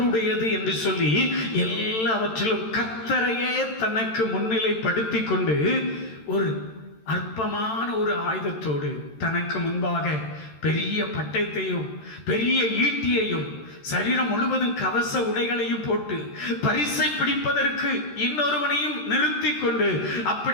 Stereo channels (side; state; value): right; late; 13 ms